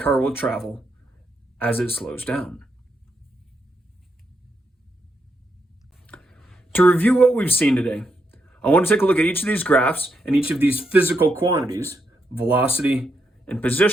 will travel as it slows down. To review what we've seen today, I want to take a look at each of these graphs and each of these physical quantities, velocity and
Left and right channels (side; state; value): both; normal; correlation 0.80